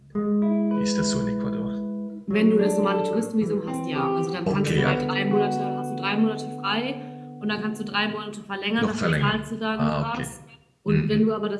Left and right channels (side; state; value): both; identical; correlation 1.00